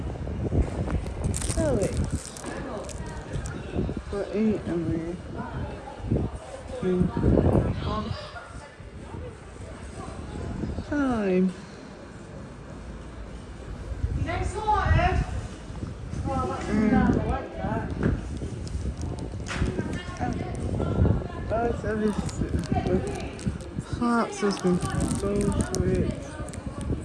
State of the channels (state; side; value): identical; both; correlation 1.00